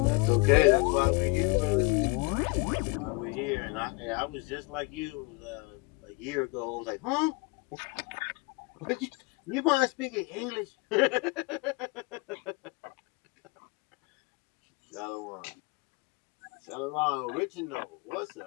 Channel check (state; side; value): quieter; right; 28.1 dB